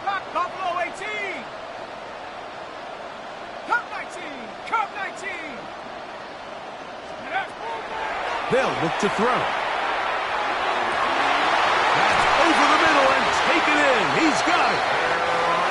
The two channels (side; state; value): both; identical; correlation 1.00